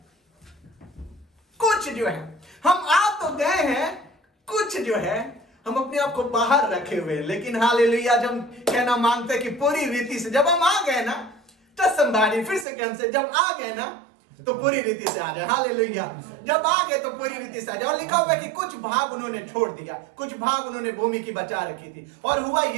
हम आ तो गए हैं, कुछ जो है हम अपने आप को बाहर रखे हुए। लेकिन हालेलुया, जब कहना मांगते कि पूरी रीति से जब हम आ गए ना, तो संभाली फिर से कौन से, जब आ गए ना तो पूरी रीति से आ जाए। हालेलुया, जब आ गए तो पूरी रीति से आ जाए। और लिखा हुआ है कि कुछ भाग उन्होंने छोड़ दिया, कुछ भाग उन्होंने भूमि की बचा रखी थी। और हुआ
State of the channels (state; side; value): drops out; left; at 12.7 s